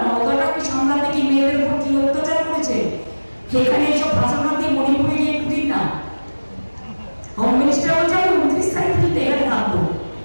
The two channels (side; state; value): both; inverted; correlation -1.00